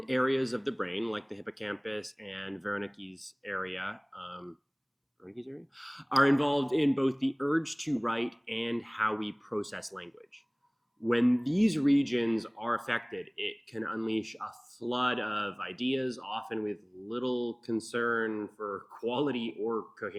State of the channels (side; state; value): both; identical; correlation 1.00